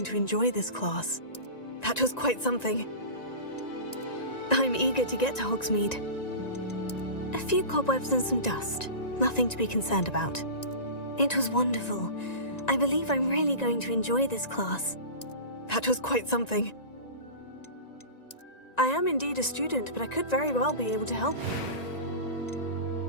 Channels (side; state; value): right; late; 1.9 ms